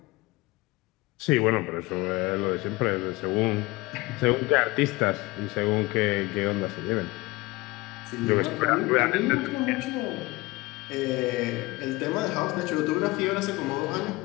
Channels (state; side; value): quieter; right; 21.7 dB